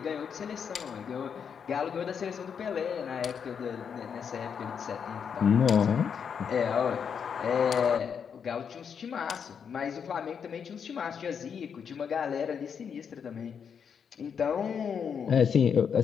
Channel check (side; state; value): right; quieter; 7.1 dB